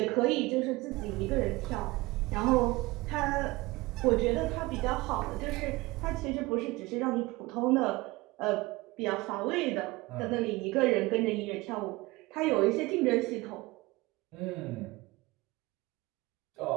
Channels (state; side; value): quieter; left; 21.6 dB